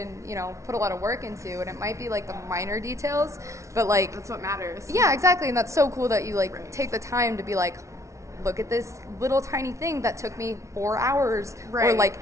put a lot of work into, and it might be the minor details, but that's what matters. Yeah, exactly. And that's so cool that you take the time to be look at this little tiny thing that took me 4 hours or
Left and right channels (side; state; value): left; late; 0.14 ms